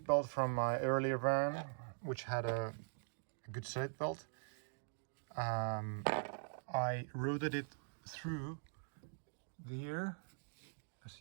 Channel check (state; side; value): silent; left; digital silence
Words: from my earlier van, which had a good seatbelt. I routed it through here, as